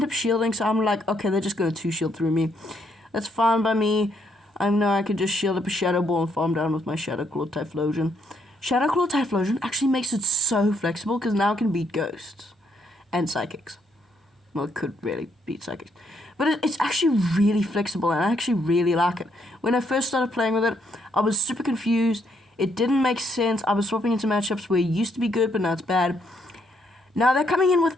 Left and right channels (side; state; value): both; normal; correlation 0.73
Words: up shielding, so I'm like, okay, they're just going to 2-shield through me. That's fine by me. I know I could just shield up a Shadow Ball and farm down with my Shadow Claw Typhlosion. Shadow Claw Typhlosion actually makes it so flexible, because now it can beat Ghosts and Psychics. Well, it could really beat Psychics. But it's actually really flexible, and I actually really like it. When I first started playing with it, I was super confused. It didn't make sense. I was swapping into matchups where it used to be good, but now it's bad. Now they're coming in with